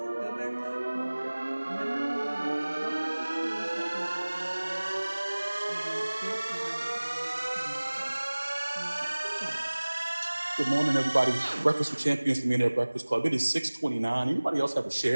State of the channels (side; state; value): both; inverted; correlation -1.00